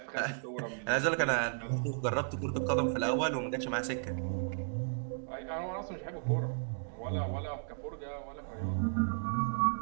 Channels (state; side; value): silent; left; digital silence